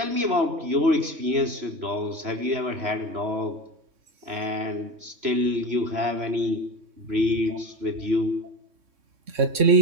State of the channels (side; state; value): left; late; 3.6 ms